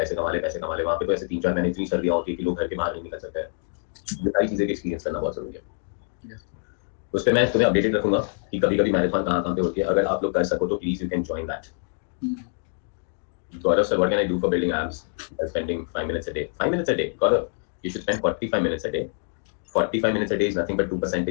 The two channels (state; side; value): silent; right; digital silence